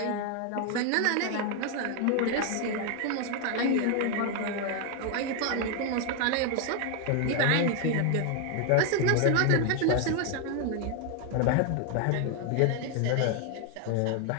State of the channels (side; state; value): both; different; correlation 0.01